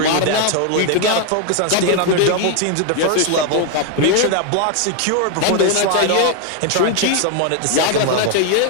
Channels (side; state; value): both; different; correlation 0.01